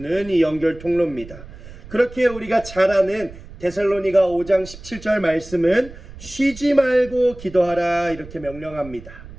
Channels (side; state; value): right; noise; rumble, 17 dB below the sound